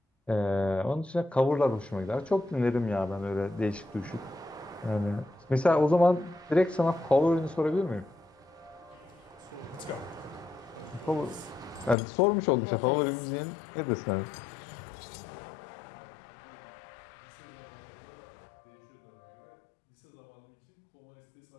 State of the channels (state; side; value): drops out; right; at 12.0 s